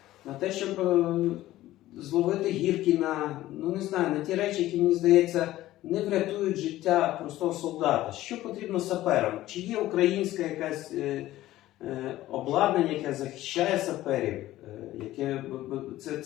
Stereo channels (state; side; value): quieter; right; 15.2 dB